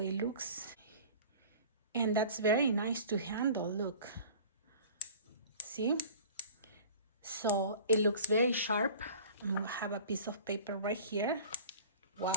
looks. And that's very nice to handle, look. See? So it looks very sharp. I'm gonna have a piece of paper right here.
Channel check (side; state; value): both; inverted; correlation -0.44